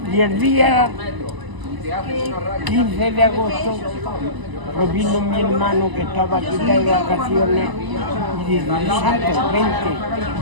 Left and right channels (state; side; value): late; left; 1.0 ms